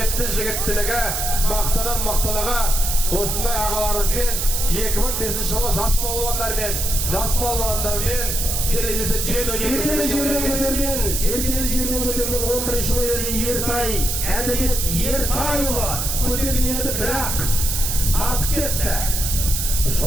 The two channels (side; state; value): right; noise; hiss, 1 dB below the sound